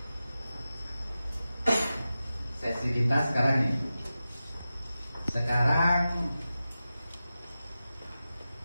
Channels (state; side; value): inverted; both; correlation -0.94